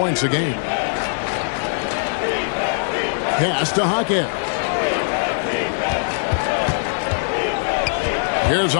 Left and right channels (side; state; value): right; silent; digital silence